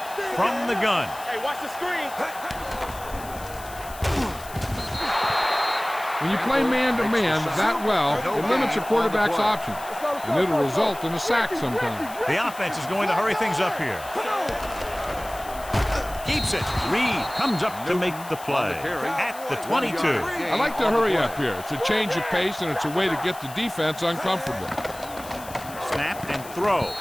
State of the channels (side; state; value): left; noise; hiss, 16 dB below the sound